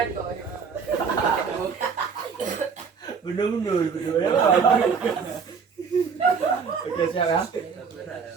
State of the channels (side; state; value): left; quieter; 5.8 dB